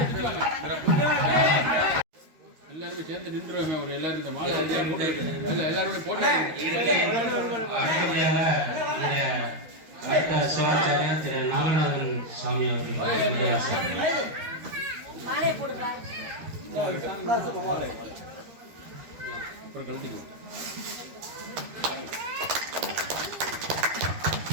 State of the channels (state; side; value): late; left; 13 ms